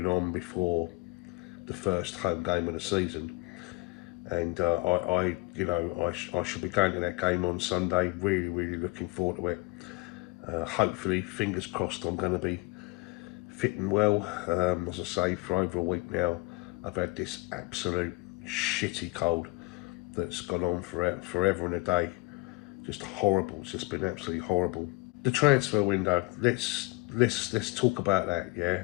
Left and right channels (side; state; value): right; quieter; 23.9 dB